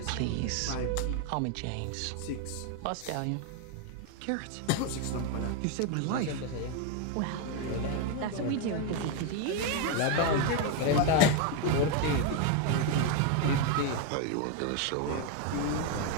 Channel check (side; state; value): both; different; correlation 0.01